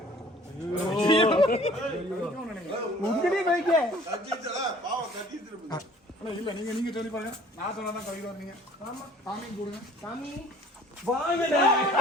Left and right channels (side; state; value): both; normal; correlation 0.53